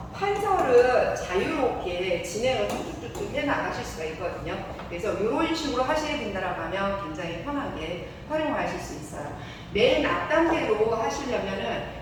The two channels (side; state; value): both; identical; correlation 1.00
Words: 판서를 자유롭게 진행을 툭툭툭 해 나가실 수가 있거든요. 그래서 이런 식으로 하시게 된다라고 하면 굉장히 편하게 활용하실 수 있어요. 맨 앞단계로 하시려면은